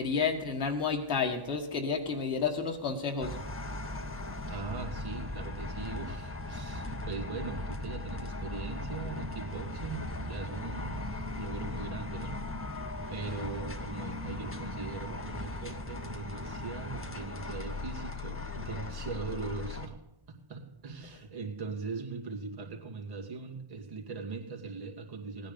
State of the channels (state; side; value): late; left; 1.1 ms